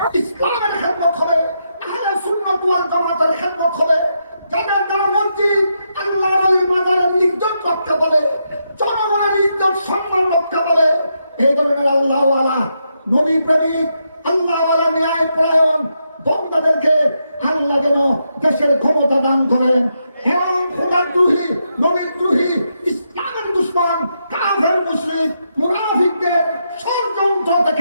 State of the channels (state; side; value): inverted; both; correlation -0.82